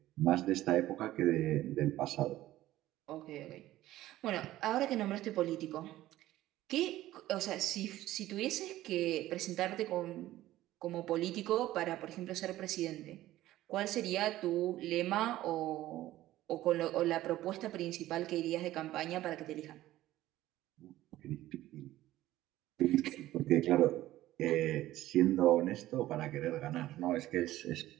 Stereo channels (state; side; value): quieter; left; 15.1 dB